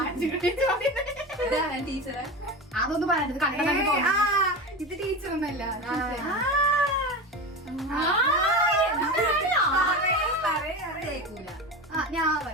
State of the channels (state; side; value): normal; both; correlation 0.25